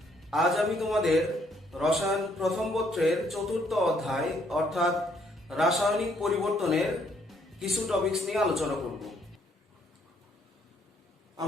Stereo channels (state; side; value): normal; both; correlation 0.68